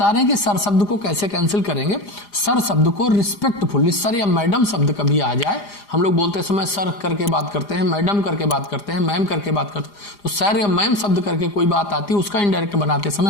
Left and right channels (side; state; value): right; late; 4.9 ms